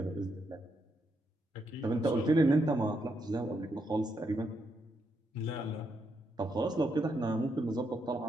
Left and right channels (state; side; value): normal; both; correlation 0.80